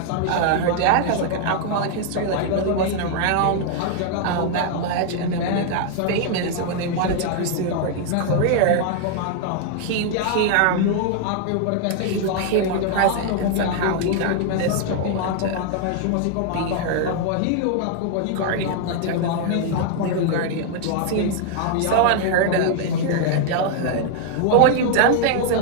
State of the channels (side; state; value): both; different; correlation 0.00